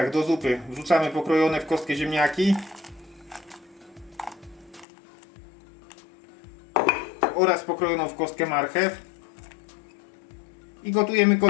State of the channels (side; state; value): right; drops out; at 4.9 s